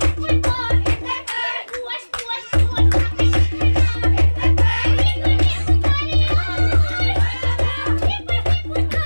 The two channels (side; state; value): both; inverted; correlation -1.00